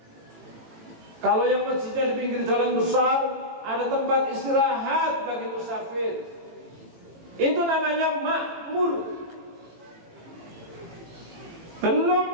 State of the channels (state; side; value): late; left; 18 ms